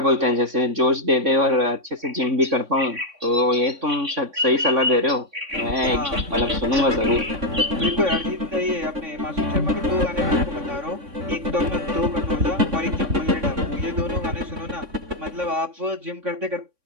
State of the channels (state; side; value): late; left; 3.6 ms